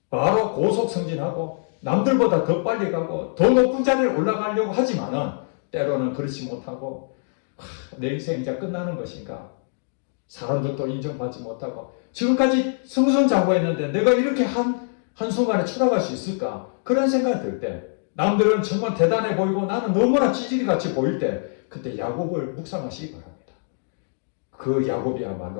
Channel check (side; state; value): right; silent; digital silence